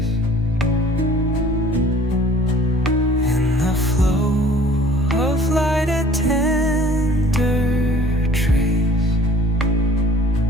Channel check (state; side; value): normal; both; correlation 0.51